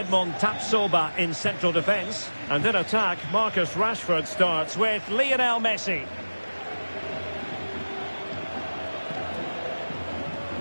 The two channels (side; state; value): both; inverted; correlation -1.00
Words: Tapsoba in central defence. And in attack, Marcus Rashford starts with Lionel Messi.